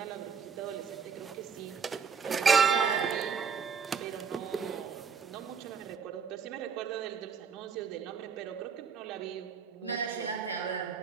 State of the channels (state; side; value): quieter; left; 6.1 dB